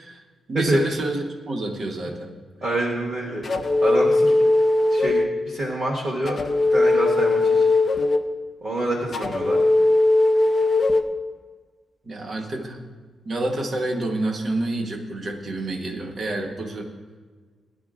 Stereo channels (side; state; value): both; normal; correlation 0.91